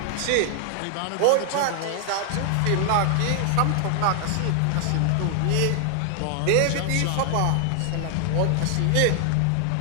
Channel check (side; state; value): both; different; correlation 0.00